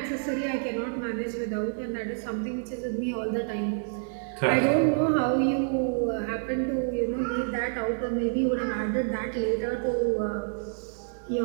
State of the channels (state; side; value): silent; left; digital silence